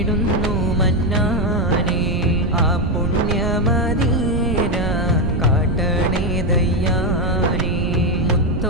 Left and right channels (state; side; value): noise; right; rumble, 2 dB below the sound